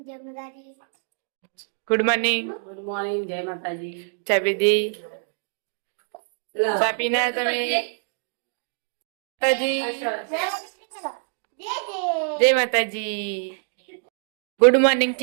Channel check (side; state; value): left; silent; digital silence